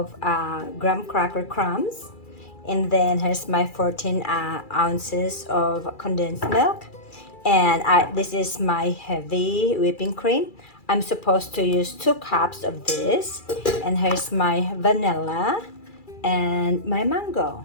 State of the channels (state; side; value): late; right; 2.3 ms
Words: graham cracker crumbs, and then here's my 14 ounces of condensed milk, and this is my heavy whipping cream. I'm supposed to use 2 cups of this, and here's my vanilla and my mango.